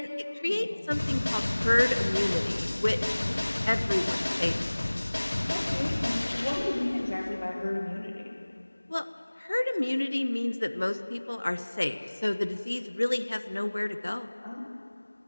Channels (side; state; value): both; inverted; correlation -1.00